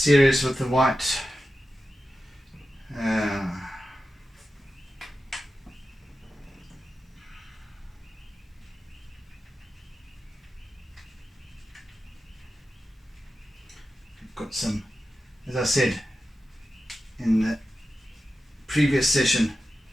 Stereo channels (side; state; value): both; normal; correlation 0.92